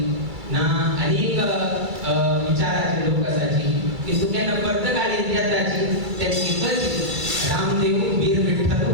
ना अनेक विचाराचे लोक आसाची की तुगेन पर्तगाळी येताची ते एकच रामदेव वीर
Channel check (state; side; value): late; left; 2.3 ms